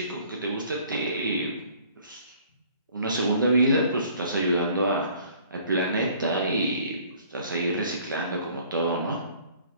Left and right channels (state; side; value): inverted; both; correlation -0.55